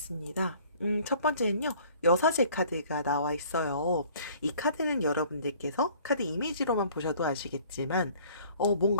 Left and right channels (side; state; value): both; inverted; correlation -0.53